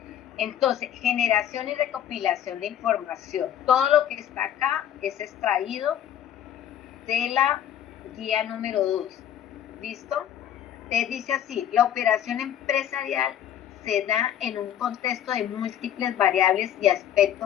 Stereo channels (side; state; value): right; quieter; 10.4 dB